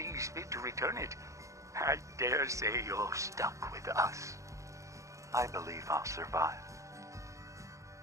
fit to return it, I dare say you're stuck with us. I believe I'll survive.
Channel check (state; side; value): late; left; 0.15 ms